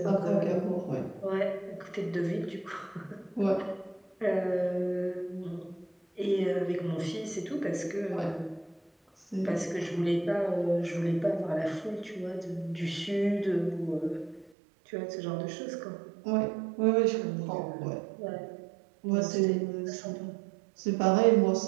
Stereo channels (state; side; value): drops out; left; at 14.5 s